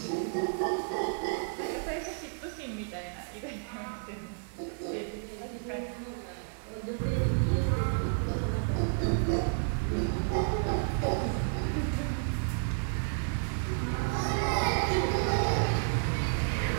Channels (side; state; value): left; silent; digital silence